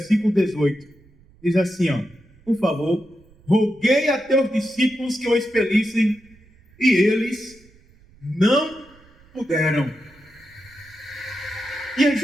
18. Diz assim, por favor, roguei a teus discípulos que o expelissem, e eles não puderam. E é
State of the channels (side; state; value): right; noise; rumble, 28 dB below the sound